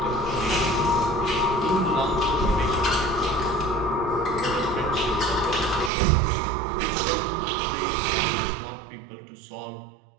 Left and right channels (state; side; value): drops out; left; at 5.9 s